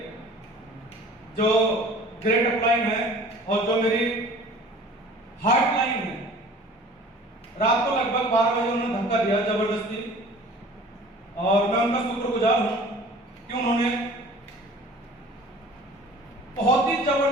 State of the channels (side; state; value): both; normal; correlation 0.46